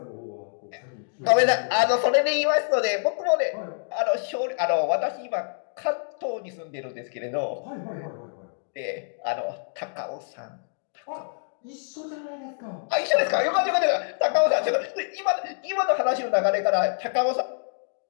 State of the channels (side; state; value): right; silent; digital silence